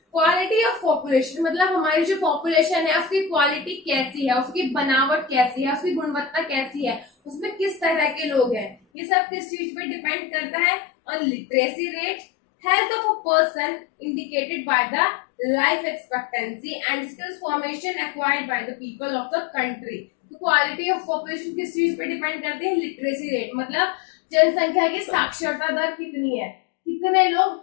Quality of population मतलब हमारी जो पॉपुलेशन है उसकी क्वालिटी कैसी है, उसकी बनावट कैसी है, उसकी गुणवत्ता कैसी है, उसमें किस तरह के लोग हैं, ये सब किस चीज पे डिपेंड करता है? On literacy rate, health of a person indicated by the life expectancy and skills formation acquired by the people of the country। तो क्वालिटी ऑफ पॉपुलेशन किस चीज पे डिपेंड करती है? लिटरेसी रेट, मतलब जनसंख्या की साक्षरता दर कितनी है, कितने लोग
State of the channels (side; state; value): right; drops out; at 8.8 s